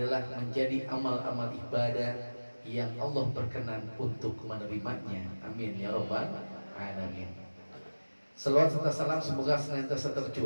menjadi amal-amal ibadah yang Allah berkenan untuk menerimanya. Amin ya rabbal alamin. Salawat serta salam semoga senantiasa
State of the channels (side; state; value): both; inverted; correlation -1.00